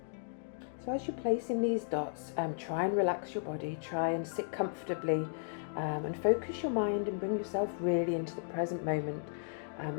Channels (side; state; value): right; silent; digital silence